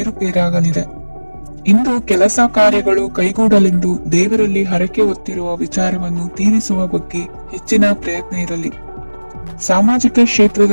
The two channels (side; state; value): both; inverted; correlation -1.00